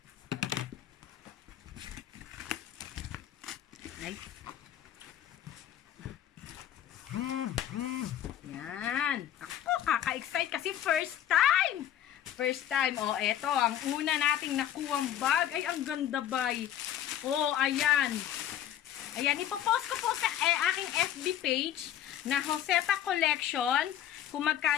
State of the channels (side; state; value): right; quieter; 11.1 dB